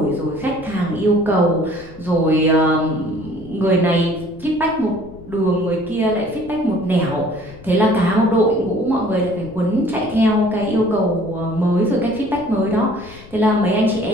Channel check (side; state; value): left; noise; rumble, 20 dB below the sound